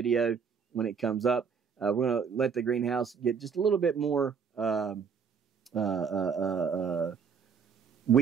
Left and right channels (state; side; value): quieter; left; 6.4 dB